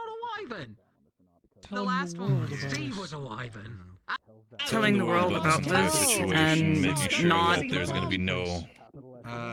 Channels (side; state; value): both; identical; correlation 1.00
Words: a wyvern. The last one. Steve was a wyvern. Telling the world about this and making sure not that there's going to be no.